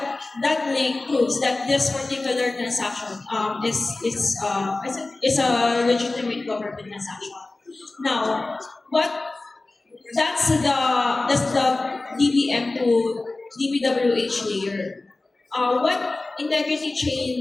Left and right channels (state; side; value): quieter; right; 3.2 dB